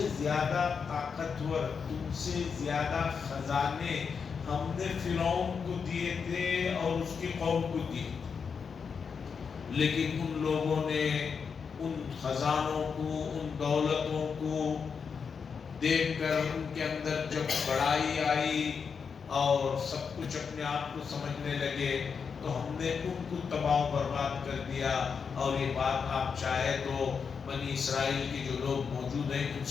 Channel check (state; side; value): quieter; right; 6.0 dB